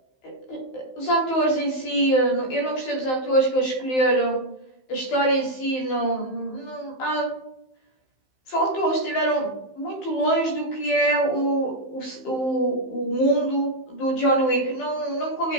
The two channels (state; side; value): late; right; 15 ms